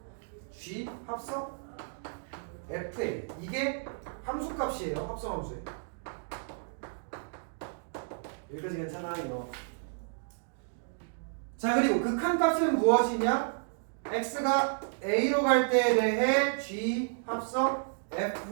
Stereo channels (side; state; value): left; silent; digital silence